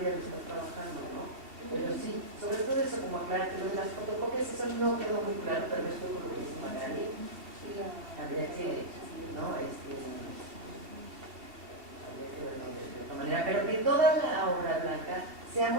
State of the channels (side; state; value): left; late; 2.7 ms